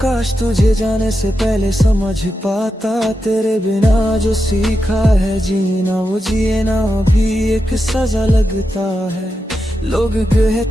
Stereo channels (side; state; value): both; normal; correlation 0.88